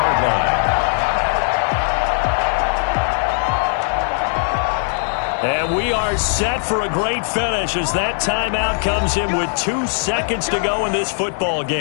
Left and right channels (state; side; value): silent; right; 66 dB below the other